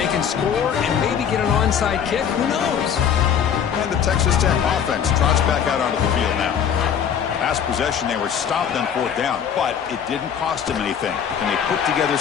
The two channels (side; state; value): right; quieter; 8.2 dB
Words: can score and maybe get an onside kick, who knows? And the Texas Tech offense trots back out onto the field now. Last possession, they were stopped on 4th down, but it didn't cost them anything. And they put together